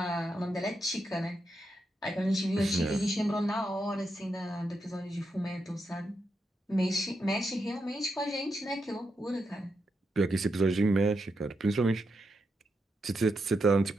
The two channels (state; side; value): normal; both; correlation 0.84